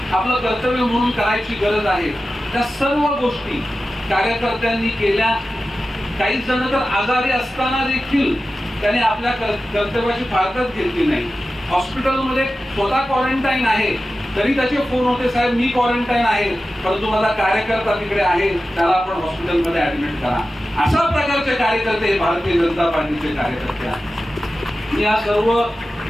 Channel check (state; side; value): normal; both; correlation 0.94